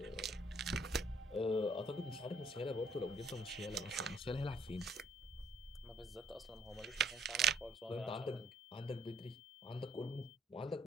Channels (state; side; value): normal; both; correlation 0.66